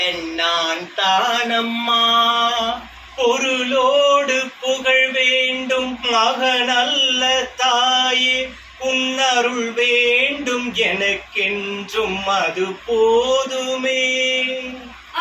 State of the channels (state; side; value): identical; both; correlation 1.00